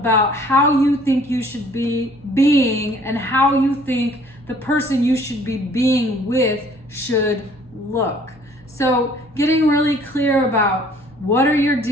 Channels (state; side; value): normal; both; correlation 0.56